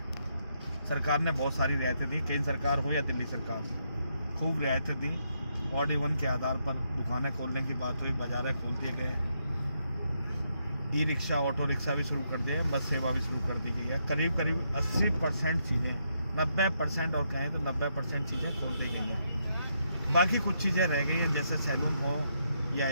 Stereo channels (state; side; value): inverted; both; correlation -0.78